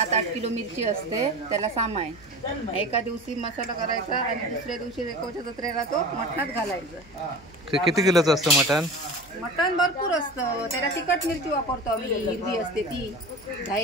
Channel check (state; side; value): noise; right; hum, 25 dB below the sound